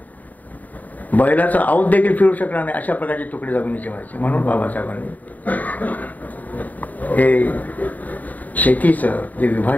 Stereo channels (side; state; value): right; late; 0.078 ms